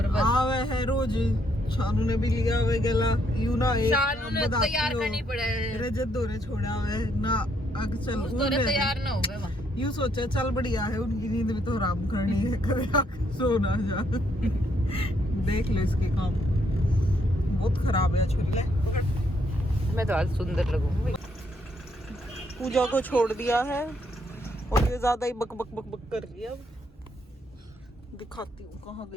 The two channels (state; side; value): normal; both; correlation 0.73